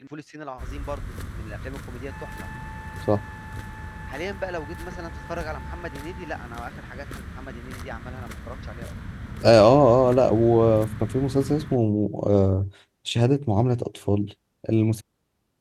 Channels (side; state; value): both; identical; correlation 1.00